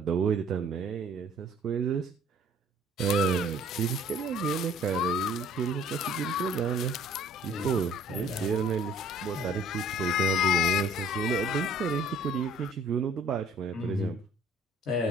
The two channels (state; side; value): normal; both; correlation 0.55